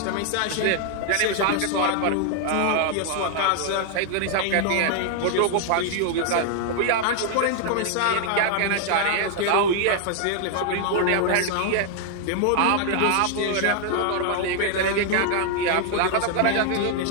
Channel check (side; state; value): both; different; correlation 0.00